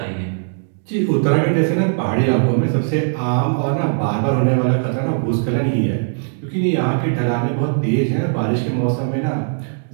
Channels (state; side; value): silent; left; digital silence